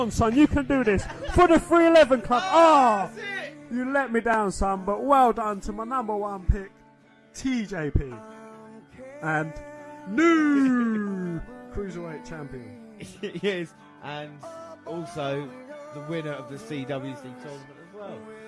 son, you can do this. For the 311 Club. Oh, you let me down, son, but well done to my number one pick, TJP. And new Cruiserweight Champion. Yes, and also the winner of the CWC tournament as well.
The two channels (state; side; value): identical; both; correlation 1.00